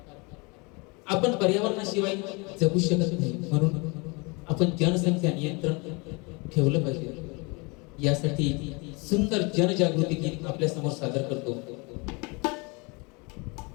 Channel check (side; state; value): right; quieter; 29.0 dB